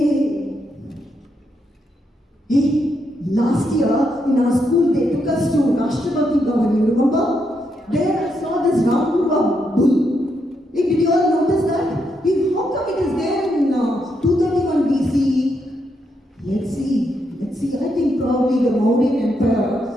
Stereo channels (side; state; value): both; normal; correlation 0.80